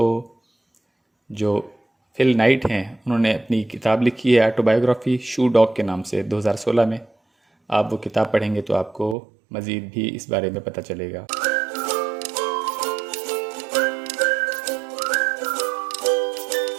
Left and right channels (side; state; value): left; drops out; at 9.2 s